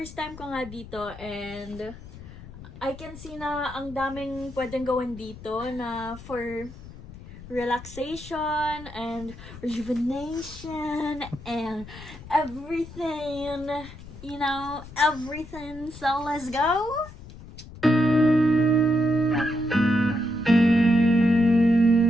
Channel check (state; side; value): noise; left; rumble, 16 dB below the sound